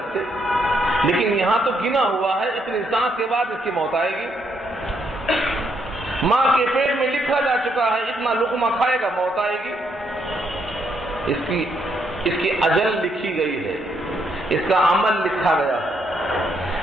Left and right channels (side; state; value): both; normal; correlation 0.74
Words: لیکن یہاں تو گنا ہوا ہے اتنی سانس کے بعد اس کی موت آئے گی. ماں کے پیٹ میں لکھا جا چکا ہے اتنا لقمہ کھائے گا موت آئے گی. اس کی اجل لکھی گئی ہے، اس کا عمل لکھا گیا ہے،